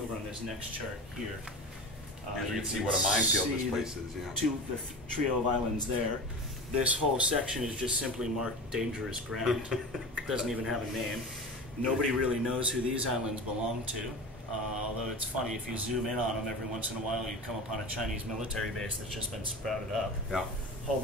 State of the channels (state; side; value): normal; both; correlation 0.31